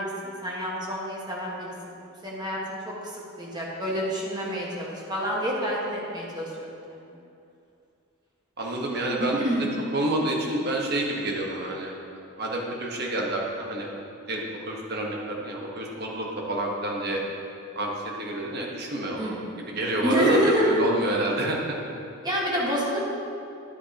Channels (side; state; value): both; normal; correlation 0.29